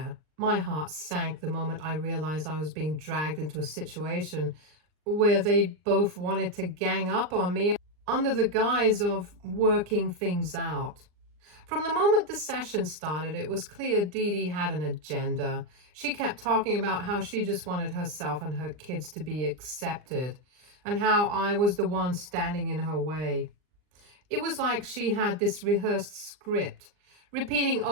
My heart sank the moment I realized I was being dragged into a situation where they both wanted to gang up on me under the guise of working things out. From the moment the session started, it was clear Dede had an agenda. She kept talking about how she just wanted herself and her kids to be accepted, and how I was the one standing in her way. It was like she had this rehearsed script, repeating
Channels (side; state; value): left; late; 39 ms